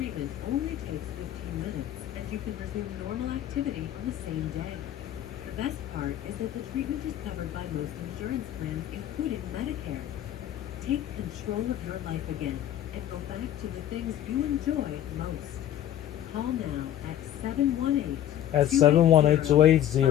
only takes 15 minutes, and you can resume normal activity on the same day. The best part is that the treatment is covered by most insurance plans, including Medicare. Take control of your life again and go back to the things you enjoy most. Call now at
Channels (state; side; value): quieter; right; 11.7 dB